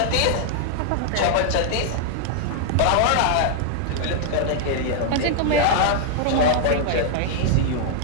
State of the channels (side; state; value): both; different; correlation -0.01